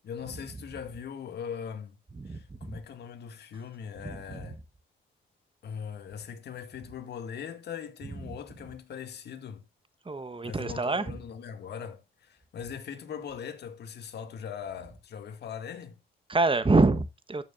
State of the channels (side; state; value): both; normal; correlation 0.62